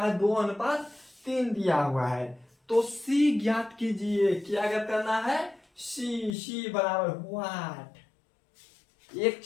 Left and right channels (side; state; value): right; drops out; at 6.4 s